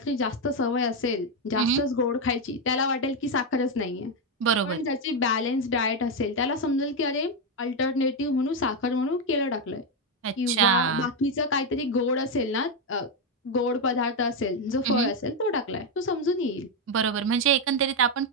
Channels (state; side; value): normal; both; correlation 0.05